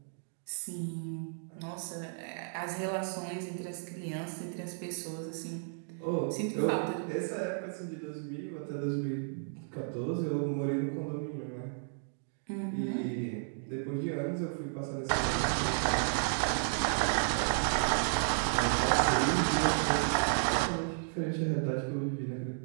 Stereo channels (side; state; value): left; silent; digital silence